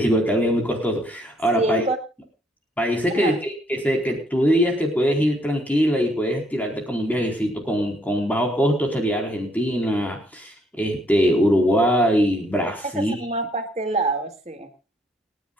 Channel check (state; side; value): normal; both; correlation 0.69